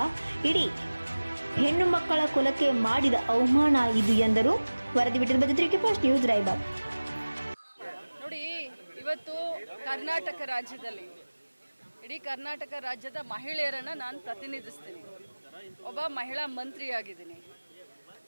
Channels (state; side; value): inverted; both; correlation -1.00